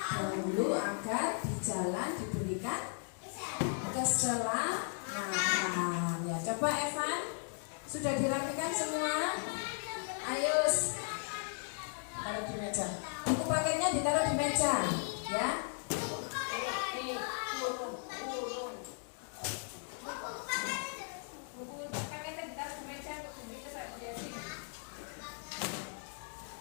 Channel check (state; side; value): silent; right; 53 dB below the other